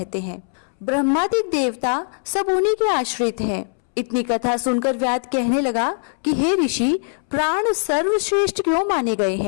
हैं। ब्रह्मादिक देवता सब उन्हीं के आश्रित हैं। इतनी कथा सुनकर व्याध कहने लगा कि हे ऋषि, प्राण सर्वश्रेष्ठ क्यों माने गए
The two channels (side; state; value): right; silent; 65 dB below the other